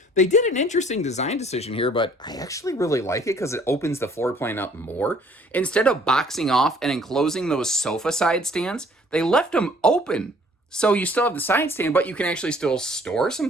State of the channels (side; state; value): both; normal; correlation 0.57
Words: They did an interesting design decision here, but I actually really like it because it opens the floor plan up more. Instead of boxing off and enclosing those sofa side stands, they left them open. So you still have the side stand, but you can actually still store some